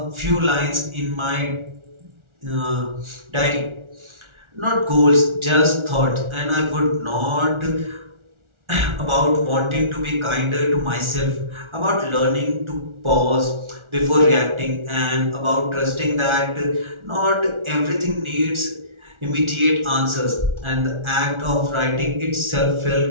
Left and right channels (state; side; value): late; left; 1.4 ms